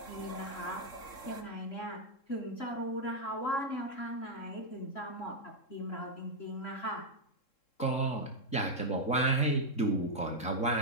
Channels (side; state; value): right; late; 3.7 ms